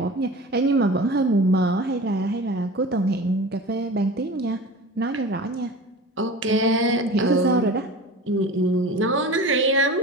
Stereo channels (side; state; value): both; normal; correlation 0.35